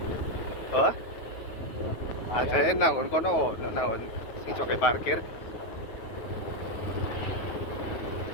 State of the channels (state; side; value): late; right; 9.4 ms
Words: Apa? Aja nangon kono, nangon sing coke parkir.